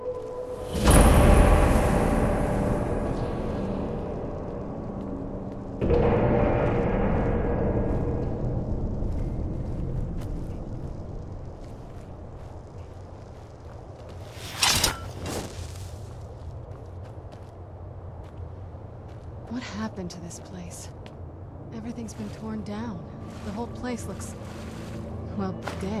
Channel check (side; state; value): both; identical; correlation 1.00